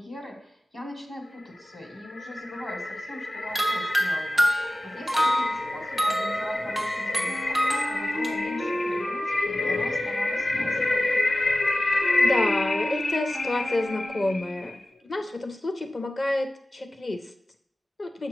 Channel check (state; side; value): normal; both; correlation 0.96